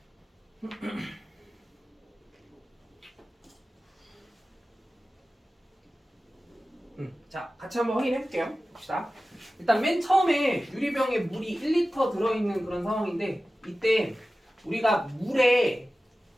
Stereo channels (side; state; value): both; normal; correlation 0.96